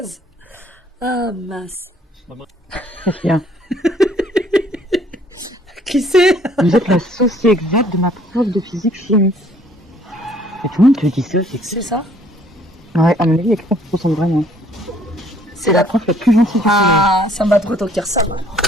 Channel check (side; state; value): both; normal; correlation 0.61